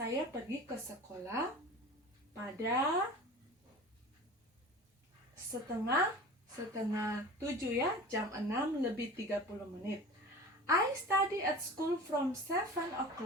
pergi ke sekolah pada setengah 7 ya, jam 6:30. I study at school from 7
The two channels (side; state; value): both; normal; correlation 0.37